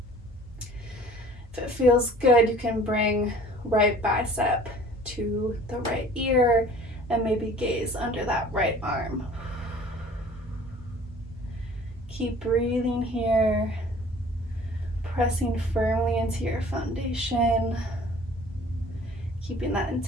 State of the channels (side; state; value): both; normal; correlation 0.49